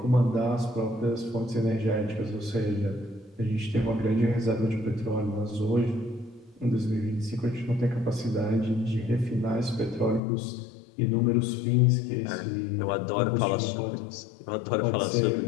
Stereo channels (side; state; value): right; drops out; at 10.2 s